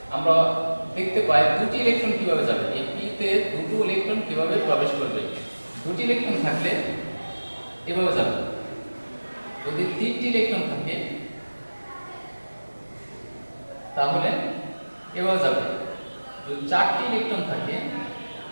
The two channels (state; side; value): inverted; both; correlation -1.00